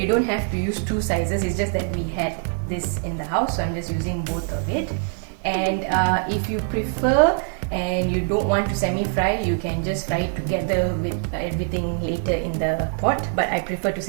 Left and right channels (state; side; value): silent; left; 56 dB below the other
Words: don't have to use 2 sizes, it's just that we had this in the house, so I'm just using both of it. And if you prefer and you don't want to semi-fry, you can just fry it together with everything later in the pot, but I prefer to